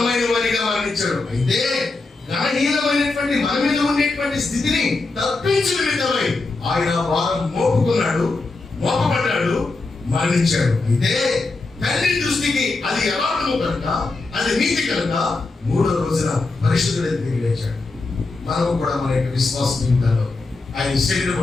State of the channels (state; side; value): quieter; right; 3.5 dB